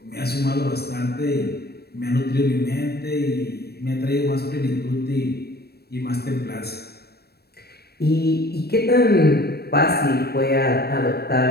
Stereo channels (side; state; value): right; late; 0.47 ms